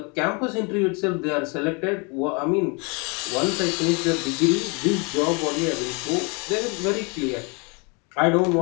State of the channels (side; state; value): right; quieter; 31.9 dB